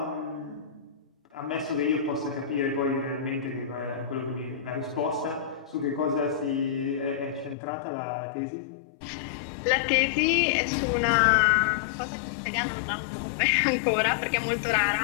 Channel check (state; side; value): drops out; right; at 7.6 s